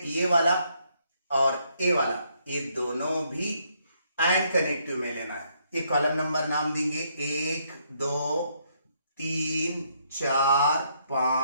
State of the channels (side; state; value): both; inverted; correlation -0.72